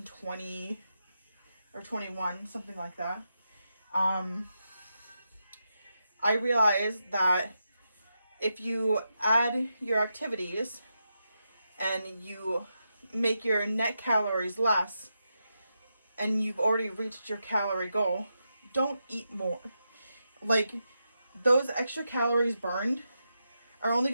or 21, something like that. I realized that if you add your activities and you make your net calories less and you've already reached your calorie goal, don't eat more. Like, those extra calories burned are only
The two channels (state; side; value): inverted; both; correlation -0.86